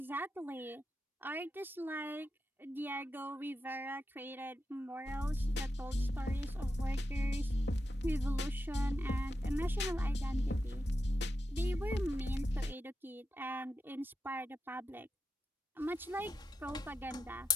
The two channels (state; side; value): normal; both; correlation 0.87